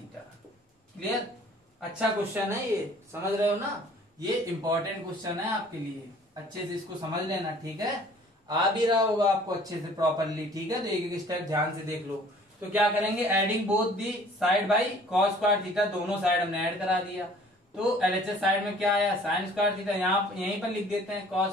Clear, अच्छा क्वेश्चन है ये, समझ रहे हो ना, ये इंपॉर्टेंट क्वेश्चन है आपके लिए, अच्छे से इसको समझ लेना। ठीक है, आ भी रहा होगा आपको अच्छे से प्रॉपरली। ठीक है, तो एक एक स्टेप ध्यान से देख लो। तो क्या करेंगे, adding both the side by cos square theta, दोनों साइड हमने ऐड करा दिया। तो LHS साइड में क्या आया, साइन स्क्वायर थीटा, यहाँ यहीं पर लिख देते हैं कॉस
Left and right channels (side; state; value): both; normal; correlation 0.53